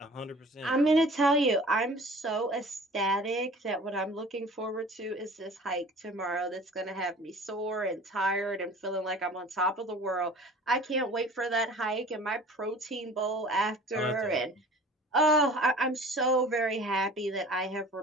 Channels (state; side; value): normal; both; correlation 0.45